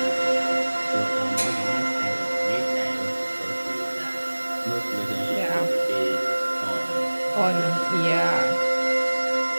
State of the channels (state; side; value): inverted; both; correlation -1.00